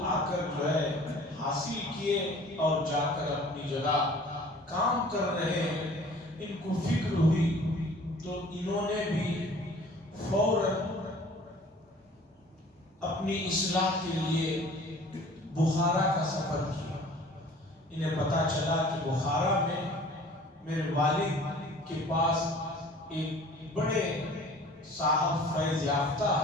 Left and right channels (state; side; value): normal; both; correlation 0.48